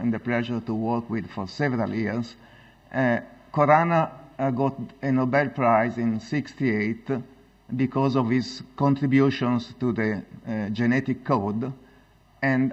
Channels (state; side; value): identical; both; correlation 1.00